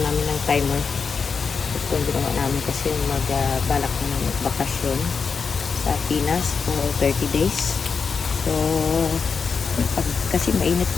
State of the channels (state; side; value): quieter; right; 5.5 dB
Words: namin ng timer. Ito yung ginawa namin kasi balak na namin magbakasyon sa Pinas for 30 days. So kasi mainit